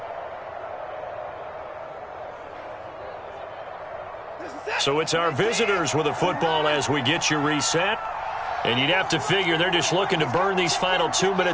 So it's our visitors with a football as we get you reset. And you'd have to figure they're just looking to burn these final 2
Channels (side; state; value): both; identical; correlation 1.00